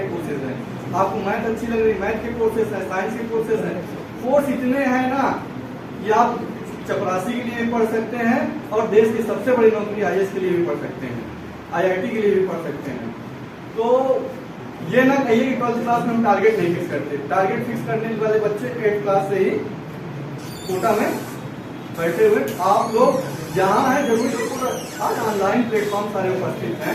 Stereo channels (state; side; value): identical; both; correlation 1.00